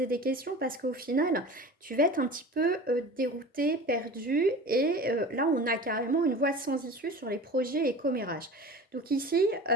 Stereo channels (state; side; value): normal; both; correlation 0.36